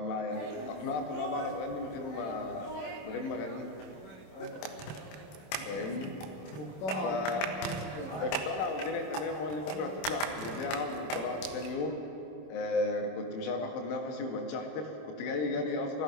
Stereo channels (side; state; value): right; late; 26 ms